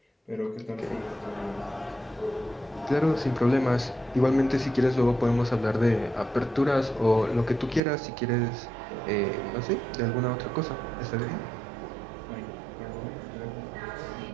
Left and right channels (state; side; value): drops out; left; at 7.8 s